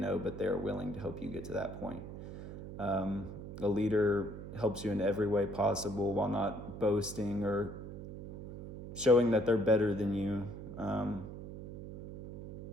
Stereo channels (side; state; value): right; noise; hum, 10 dB below the sound